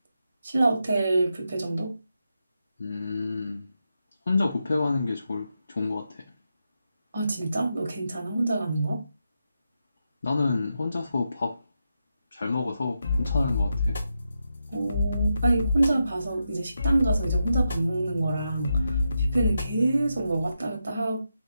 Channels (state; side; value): inverted; both; correlation -0.85